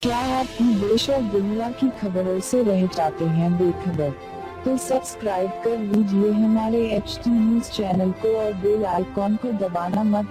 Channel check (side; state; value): both; identical; correlation 1.00